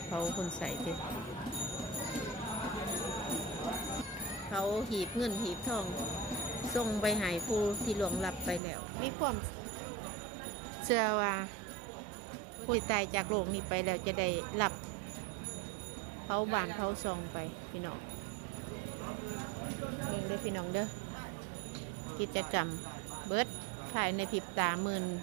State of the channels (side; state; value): left; drops out; at 8.6 s